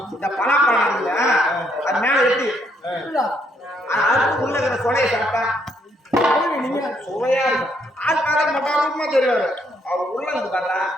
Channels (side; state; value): both; normal; correlation 0.72